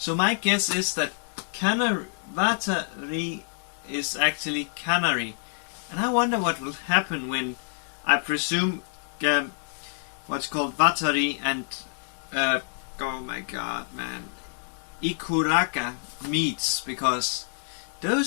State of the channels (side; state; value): right; silent; digital silence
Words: my guess is that Vatari is actually Canary. And I wonder what will happen when, I presume, what's called Vatari and, oh my god, man, Ikuraka meets, because